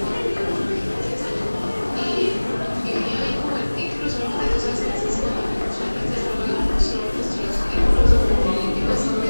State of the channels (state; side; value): inverted; both; correlation -1.00